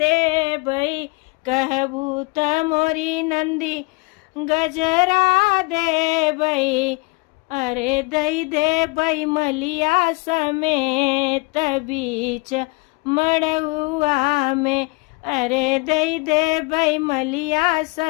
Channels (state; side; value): quieter; right; 26.8 dB